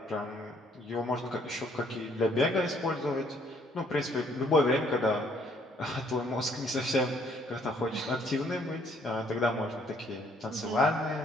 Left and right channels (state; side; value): normal; both; correlation 0.64